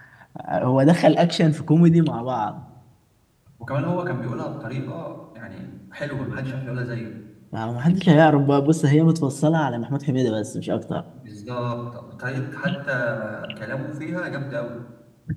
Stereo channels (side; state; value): both; identical; correlation 1.00